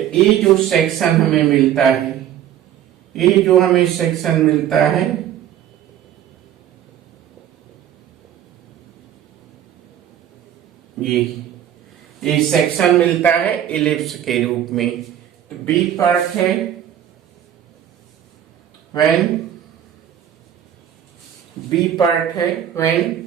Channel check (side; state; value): left; quieter; 10.6 dB